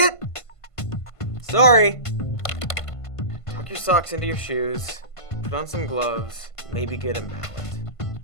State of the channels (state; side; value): late; right; 1.5 ms